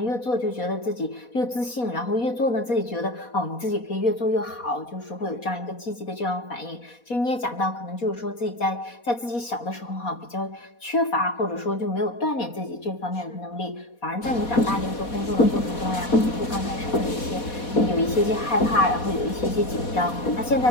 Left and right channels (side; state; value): right; late; 4.2 ms